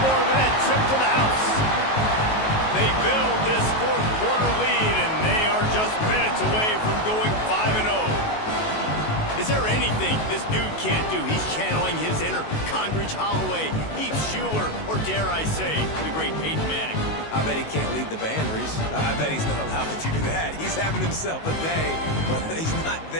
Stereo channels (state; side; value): late; right; 19 ms